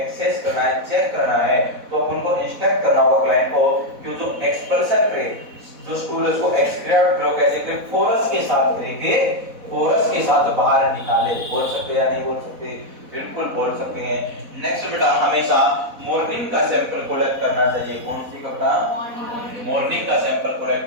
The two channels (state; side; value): late; left; 4.1 ms